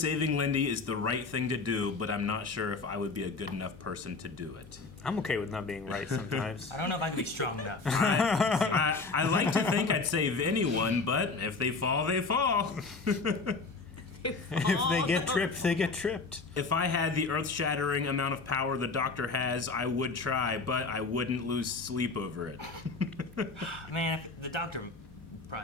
Lindy is the right thing to do, but I'm not sure if I would be a good enough person to do it. I'm okay with not being right sometimes. I don't know if I could be strong enough. I like to think I'd save anyone, but if they fall, they fall. If they get tripped, they get tripped. If I had the earth-shattering amount of power the Doctor has, I would try, but I wouldn't lose sleep over it. Man, the Doctor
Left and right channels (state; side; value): quieter; right; 4.1 dB